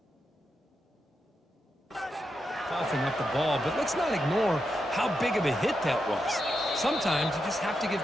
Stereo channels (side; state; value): both; normal; correlation 0.85